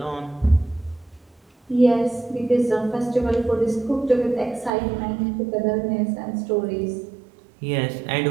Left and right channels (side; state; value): left; drops out; at 4.7 s